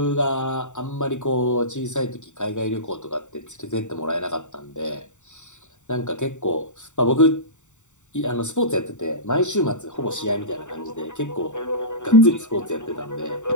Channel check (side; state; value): right; late; 0.84 ms